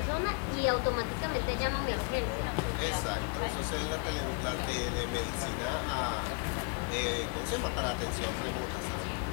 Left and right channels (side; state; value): right; quieter; 35.3 dB